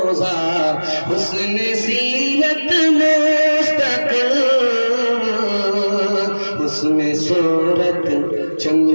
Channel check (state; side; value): inverted; both; correlation -1.00